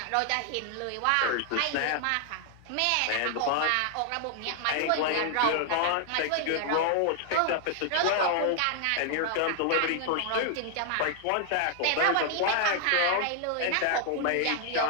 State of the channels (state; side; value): different; both; correlation 0.00